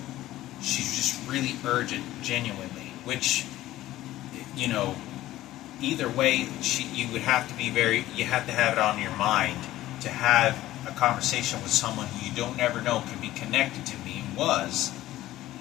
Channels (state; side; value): quieter; right; 15.2 dB